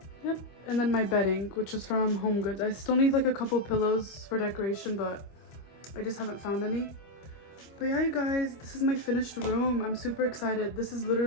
Yep, and then my bedding, which is from Home Goods. I still need like a couple pillows for decoration, but I just haven't found any. But yeah, you guys, this is my finished room. I'm super excited. This is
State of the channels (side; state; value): right; late; 25 ms